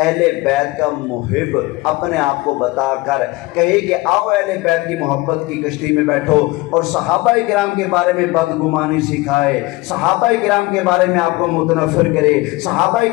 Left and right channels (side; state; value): right; quieter; 21.4 dB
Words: بیت کا محب اپنے آپ کو بتا کر کہے کہ آؤ اہل بیت کی محبت کی کشتی میں بیٹھو، اور صحابہ کرام کے بارے میں بدگمانی سکھائے، صحابہ کرام کے بارے میں آپ کو متنفر کرے، صحابہ